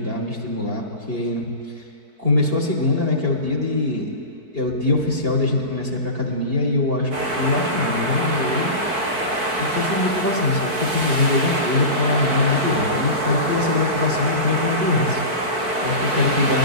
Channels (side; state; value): left; late; 4.6 ms